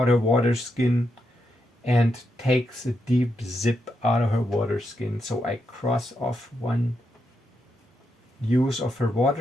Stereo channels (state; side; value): normal; both; correlation 0.83